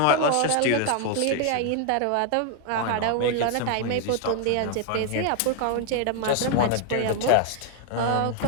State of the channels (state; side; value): different; both; correlation 0.00